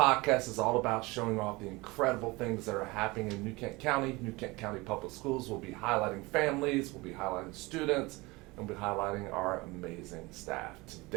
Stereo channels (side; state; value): left; quieter; 23.2 dB